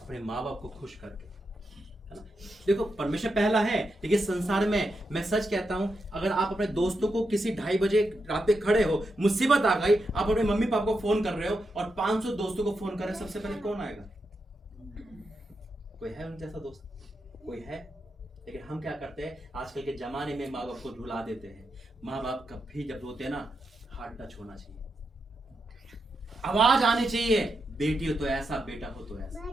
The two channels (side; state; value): both; normal; correlation 0.85